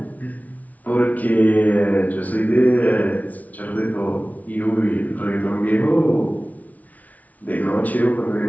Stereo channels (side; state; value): right; late; 0.072 ms